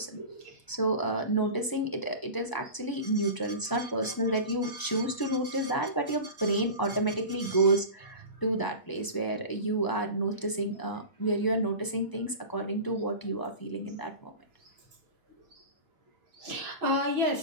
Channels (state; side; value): late; right; 1.0 ms